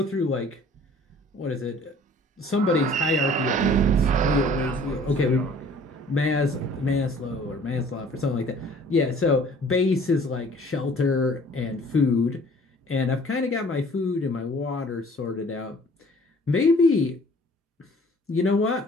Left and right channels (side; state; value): both; normal; correlation 0.53